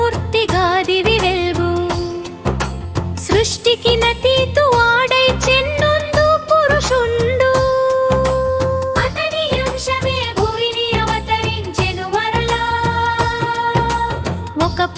దివి వెల్గు సృష్టికి నతీతు ఆడై చెన్నొందు పురుషుండు అతని అంశమే భూమిని అవతరించెను మరలా ఒక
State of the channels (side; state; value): both; identical; correlation 1.00